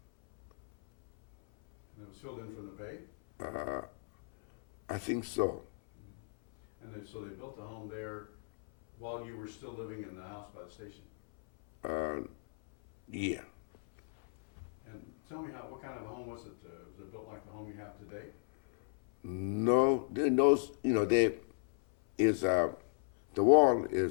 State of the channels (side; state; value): right; silent; 54 dB below the other